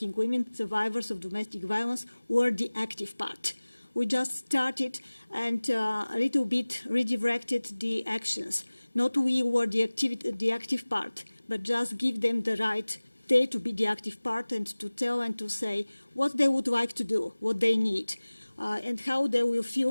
women survivors of domestic violence, were the active part. We just started and a little bit redirected the actions. Not we were the active part, but just give them the right, they to be the active part and to tell and to say what they would like to do, what they need, and how they will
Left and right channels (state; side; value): inverted; both; correlation -1.00